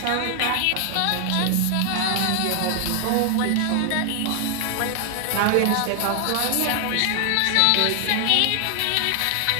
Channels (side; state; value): both; different; correlation 0.00